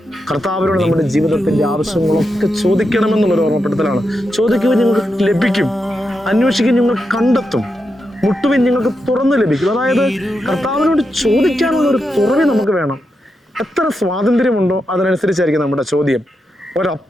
കർത്താവിനോട് നമ്മുടെ ജീവിതത്തിന്റെ ആവശ്യങ്ങളൊക്കെ ചോദിക്കണമെന്നുള്ളൊരു ഓർമ്മപ്പെടുത്തലാണ്. ചോദിക്കുവാൻ നിങ്ങൾക്ക് ലഭിക്കും, അന്വേഷിക്കാൻ നിങ്ങൾ കണ്ടെത്തും, മുട്ടുവിൻ നിങ്ങൾക്ക് തുറന്നു ലഭിക്കും. അതായത് കർത്താവിനോട് ചോദിക്കാനുള്ള ഒരു തുറവി നമുക്ക് വേണം. എത്ര സ്വാതന്ത്ര്യമുണ്ടോ അതിനനുസരിച്ചായിരിക്കും നമ്മുടെ ചോദ്യം.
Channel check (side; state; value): both; normal; correlation 0.86